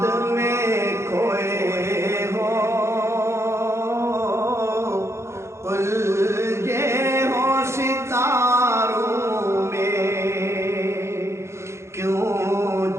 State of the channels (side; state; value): left; late; 0.13 ms